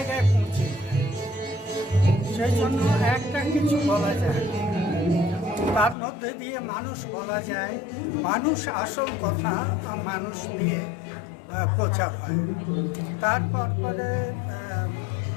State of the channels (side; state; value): right; drops out; at 6.0 s